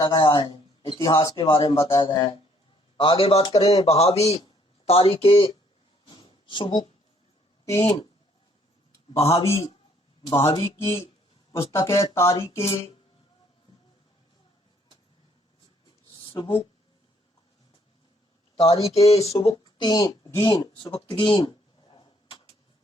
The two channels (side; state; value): both; normal; correlation 0.65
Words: गया है। आगे बात करें बहावी तारीख सुबुक्तीन। बहावी की पुस्तक है तारीख सुबुक्तगीन।